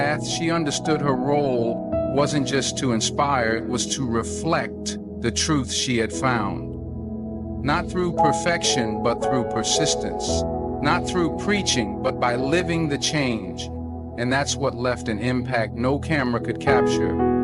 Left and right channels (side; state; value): both; identical; correlation 1.00